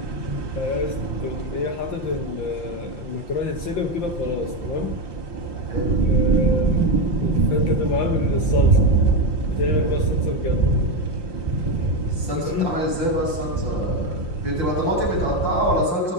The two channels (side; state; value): right; late; 5.8 ms